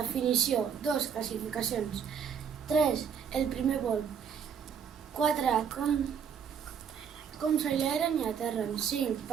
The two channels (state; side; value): quieter; left; 7.4 dB